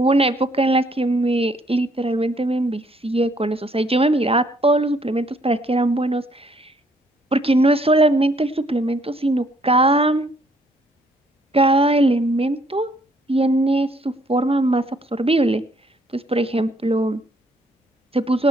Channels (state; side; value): normal; both; correlation 0.66